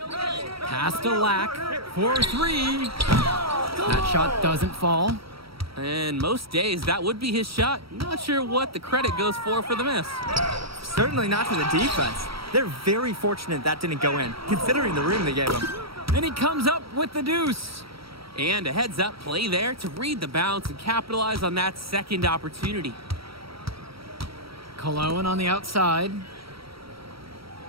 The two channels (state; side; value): late; left; 0.75 ms